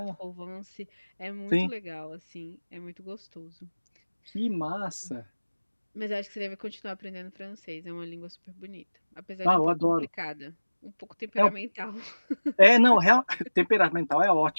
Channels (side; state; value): both; inverted; correlation -1.00